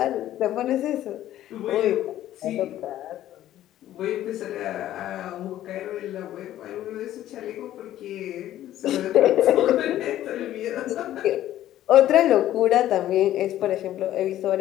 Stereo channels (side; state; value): right; quieter; 13.0 dB